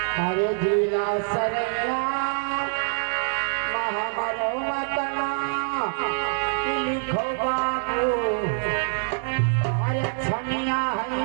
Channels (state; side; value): silent; left; digital silence